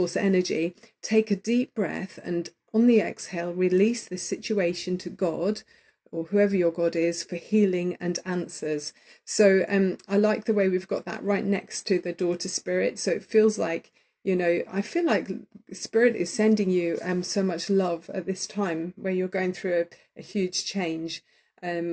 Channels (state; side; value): identical; both; correlation 1.00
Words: energy. Take a deep breath, and on the exhale, release this situation to God, or whoever your God is, for healing and answers. So I like the way we've got that right next to the Daughter Spirit. So it feels like, I feel like Spirit is sending you so much love at this time where you're going through a huge change,